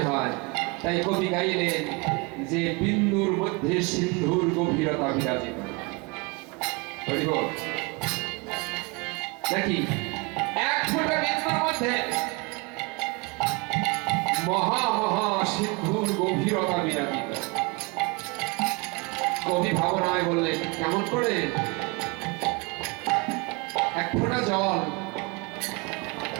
হয়। তাই কবি গাইলেন যে বিন্দুর মধ্যে সিন্ধুর গভীরতা বিরাজিত। নাকি এক ফোঁটা বিন্দুর মধ্যে মহা মহা সিন্ধুর গভীরতা বিরাজিত। কবি ভাবনায় বললেন কেমন করে? এক ফোঁটা জল,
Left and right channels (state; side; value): quieter; left; 28.5 dB